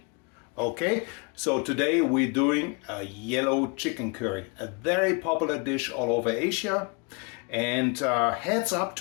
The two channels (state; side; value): quieter; right; 31.5 dB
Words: Okay, so today we're doing a yellow chicken curry, a very popular dish all over Asia. And heads up